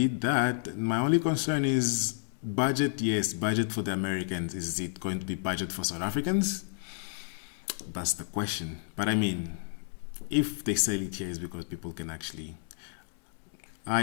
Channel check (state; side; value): silent; right; digital silence